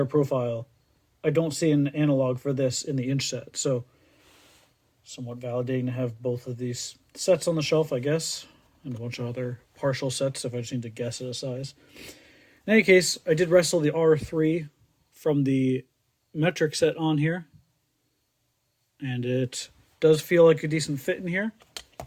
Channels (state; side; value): identical; both; correlation 1.00